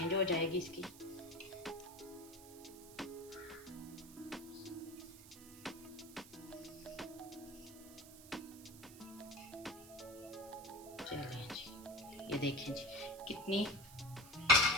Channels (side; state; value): right; noise; hiss, 17 dB below the sound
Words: हो जाएगी इसकी। चलें जी, ये देखें जी